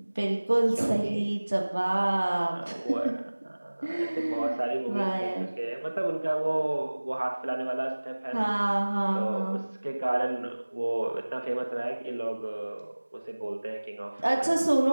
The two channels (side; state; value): both; inverted; correlation -1.00